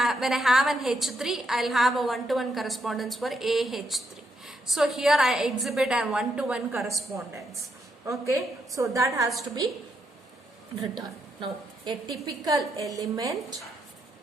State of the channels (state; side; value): normal; both; correlation 0.79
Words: have an H3, I'll have a one-to-one correspondence for AH3. So here I exhibit a one-to-one correspondence. Okay, so that has to be written. Now, a typical element